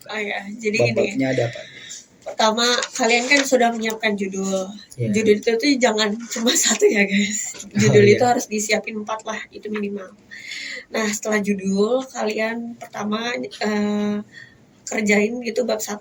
kan. Oh ya, jadi bab-babnya ada apa? Pertama kalian kan sudah menyiapkan judul. Judul itu tuh jangan cuma 1 ya guys. Judul itu harus disiapin 4 lah, itu minimal. Nah setelah judul kalian pertama kerjain gitu bab 1.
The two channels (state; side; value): identical; both; correlation 1.00